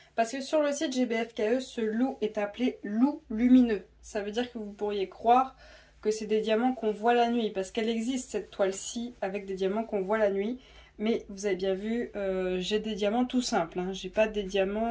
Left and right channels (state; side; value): identical; both; correlation 1.00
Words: Parce que sur le site GBFKE, ce loup est appelé loup lumineux. Ça veut dire que vous pourriez croire que c'est des diamants qu'on voit la nuit. Parce qu'elle existe cette toile-ci avec des diamants qu'on voit la nuit. Mais vous avez bien vu, j'ai des diamants tout simples. Hein. J'ai pas des